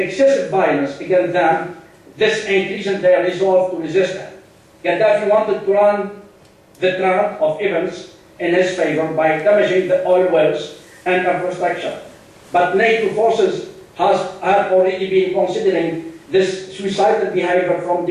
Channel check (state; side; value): identical; both; correlation 1.00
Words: violence against them, this increased their resolve to resist him. Qadhafi wanted to run the trend of events in his favor by damaging the oil wells and infrastructure. But NATO forces have already been considering this suicidal behavior from